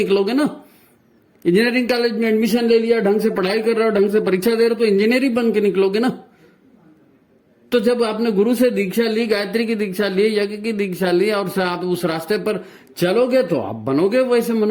ना। इंजीनियरिंग कॉलेज में एडमिशन ले लिया, ढंग से पढ़ाई कर रहे हो, ढंग से परीक्षा दे रहे हो तो इंजीनियर ही बन के निकलोगे ना। तो जब आपने गुरु से दीक्षा ली, गायत्री की दीक्षा ली, यज्ञ की दीक्षा ली और आप उस रास्ते पर चलोगे तो आप बनोगे वैसे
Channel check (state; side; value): identical; both; correlation 1.00